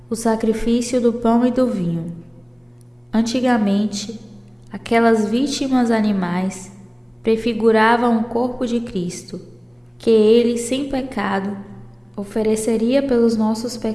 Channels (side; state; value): both; identical; correlation 1.00